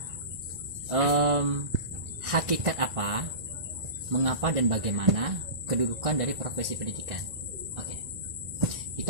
hakikat apa, mengapa dan bagaimana kedudukan dari profesi pendidikan? Oke,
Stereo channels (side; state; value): left; late; 1.6 ms